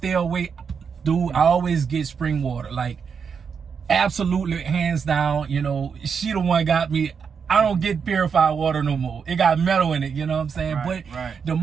away. Dude, I always get spring water. Like, absolutely, hands down, you know, she the one got me. I don't get purified water no more. It got metal in it, you know what I'm saying? Right, But right. the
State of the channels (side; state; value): left; quieter; 6.3 dB